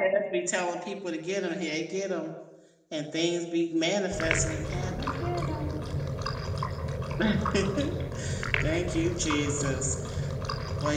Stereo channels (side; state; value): both; identical; correlation 1.00